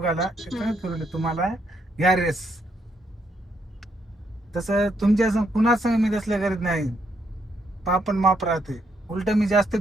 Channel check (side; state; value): both; normal; correlation 0.75